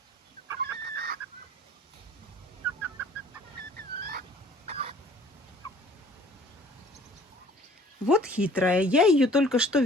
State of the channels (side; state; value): both; normal; correlation 0.53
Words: Вот хитрая. Я ее только что